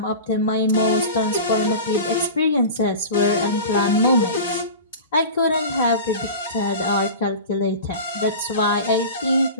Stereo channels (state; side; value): inverted; both; correlation -0.32